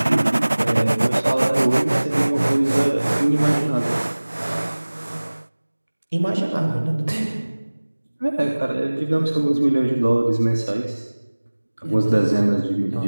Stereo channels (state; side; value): inverted; both; correlation -1.00